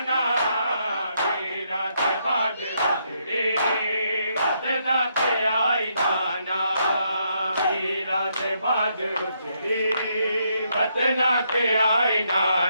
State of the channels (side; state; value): both; inverted; correlation -0.76